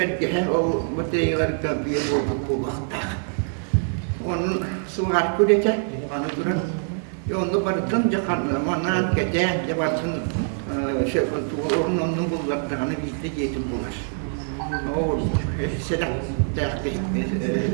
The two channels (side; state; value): left; silent; 62 dB below the other